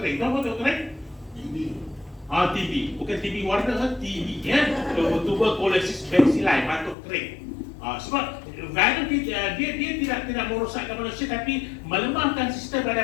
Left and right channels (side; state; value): right; drops out; at 7.0 s